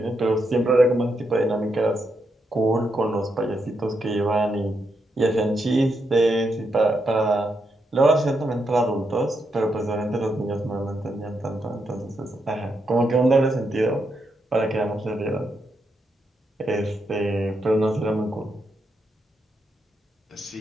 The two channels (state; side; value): normal; both; correlation 0.81